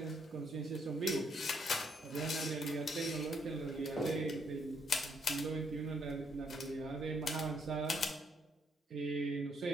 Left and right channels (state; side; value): normal; both; correlation 0.72